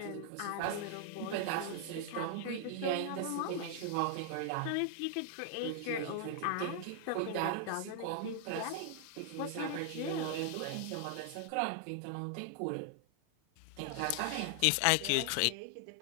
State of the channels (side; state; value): both; different; correlation 0.00